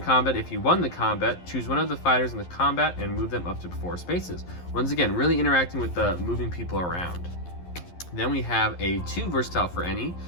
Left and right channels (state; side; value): late; right; 11 ms